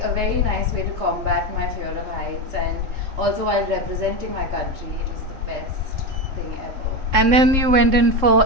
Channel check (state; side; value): late; left; 3.7 ms